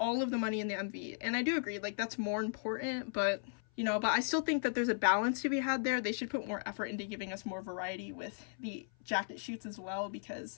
of the money in the MV, and I do agree, like, that's more important, but, you know, but I still think that there's a balance to be had there. They should put more effort into giving us more variety with the jacket shoots as well,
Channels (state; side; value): silent; right; 54 dB below the other